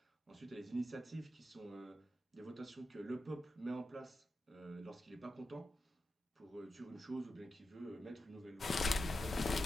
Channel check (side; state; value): both; normal; correlation 0.90